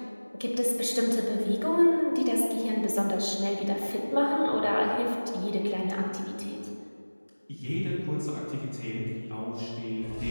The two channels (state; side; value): inverted; both; correlation -1.00